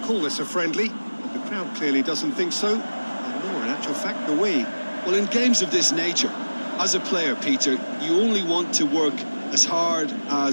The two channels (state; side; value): inverted; both; correlation -1.00